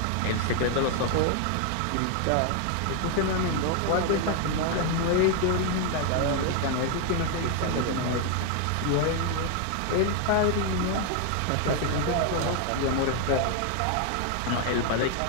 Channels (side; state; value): both; different; correlation 0.00